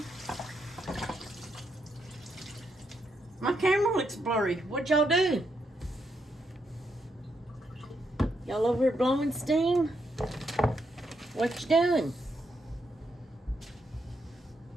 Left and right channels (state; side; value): normal; both; correlation 0.79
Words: My camera looks blurry. What y'all do? Y'all over here blowing steam? What you doing?